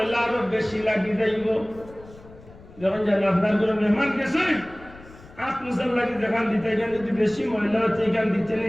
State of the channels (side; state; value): left; noise; rumble, 21 dB below the sound